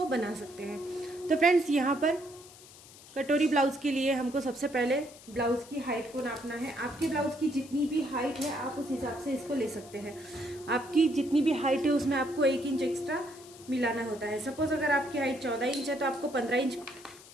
बना सकते हैं। तो फ्रेंड्स, यहाँ पर कटोरी ब्लाउज के लिए हमको सबसे पहले ब्लाउज की हाइट को नापना है। आपके ब्लाउज की जितनी भी हाइट है आप उस हिसाब से इसको ले सकते हैं। आपकी जितनी भी हाइट है उसमें आपको 1 इंच एक्स्ट्रा मिलाना होता है। सपोज अगर आपकी हाइट 14 इंच है तो आपको 15 इंच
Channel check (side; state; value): left; noise; hiss, 20 dB below the sound